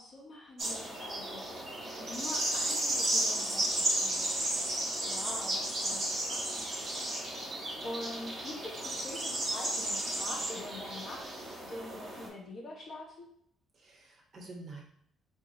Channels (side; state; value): both; normal; correlation 0.76